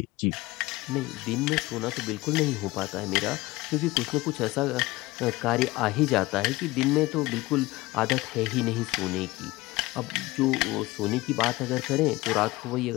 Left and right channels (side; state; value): right; quieter; 20.2 dB